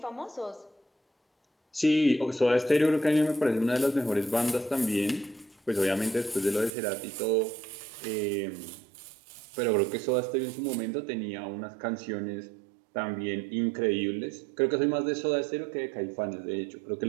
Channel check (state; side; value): drops out; left; at 6.7 s